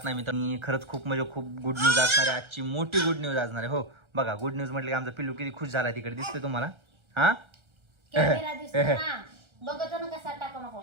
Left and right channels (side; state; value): left; late; 1.3 ms